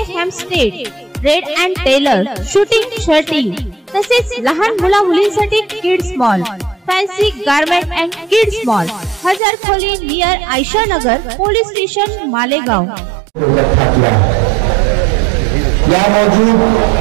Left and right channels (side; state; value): left; drops out; at 9.4 s